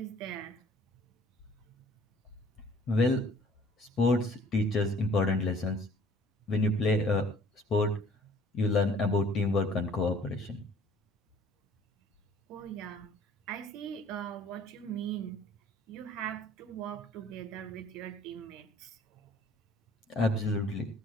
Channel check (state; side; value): normal; both; correlation 0.55